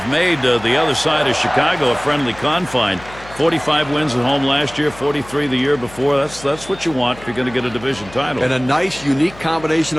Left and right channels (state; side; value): noise; left; hum, 19 dB below the sound